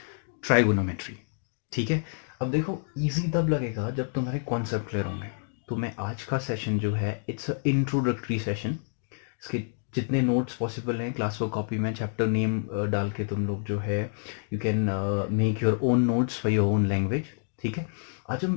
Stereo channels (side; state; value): right; silent; digital silence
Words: ट्राइगोनोमेट्री. ठीक है. अब देखो, इजी तब लगेगा जब तुम्हारे कॉन्सेप्ट क्लियर होंगे. तो मैं आज का सेशन जो है, इट्स अ इंट्रोडक्टरी सेशन. इसके जितने नोट्स पॉसिबल हैं क्लास वर्क कॉपी में चैप्टर नेम डाल के तुम लोग जो है you can make your own notes for your own language. ठीक है. आज